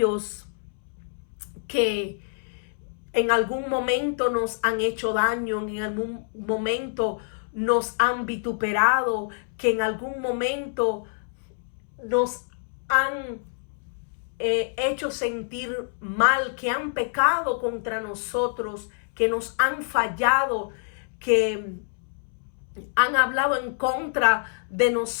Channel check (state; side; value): silent; right; 61 dB below the other